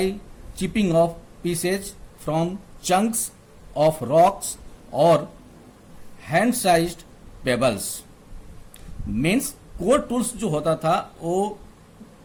chipping off pieces from chunks of rocks और hand sized pebbles. Means core tools जो होता था वो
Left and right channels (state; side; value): identical; both; correlation 1.00